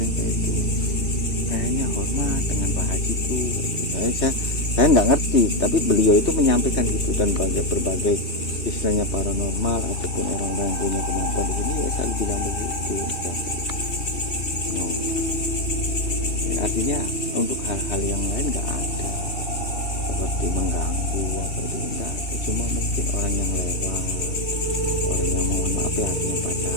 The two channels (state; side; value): late; right; 2.7 ms